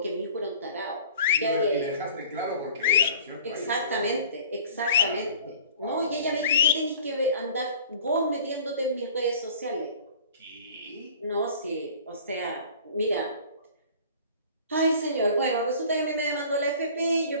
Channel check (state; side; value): inverted; both; correlation -0.46